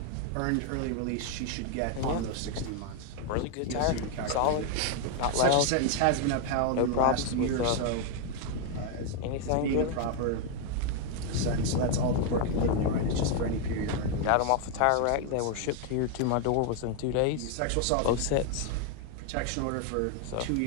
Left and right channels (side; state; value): both; different; correlation 0.00